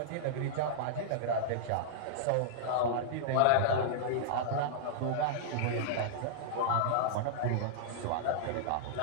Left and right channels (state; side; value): different; both; correlation -0.02